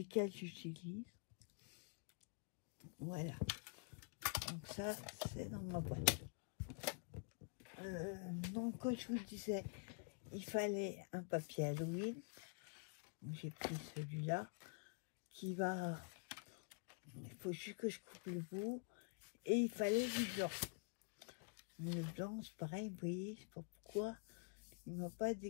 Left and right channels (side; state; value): right; quieter; 38.2 dB